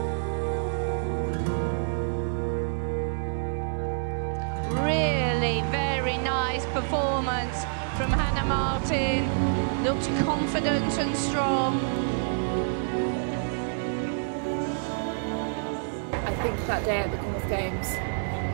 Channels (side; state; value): left; silent; 60 dB below the other